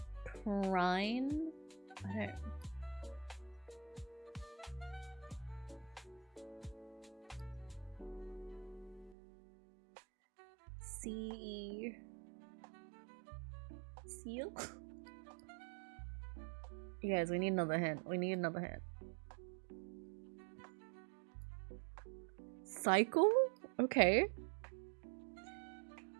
Prime? I don't. Seal? You guys, we need another hint. Cycle? Okay.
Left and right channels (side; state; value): left; drops out; at 9.2 s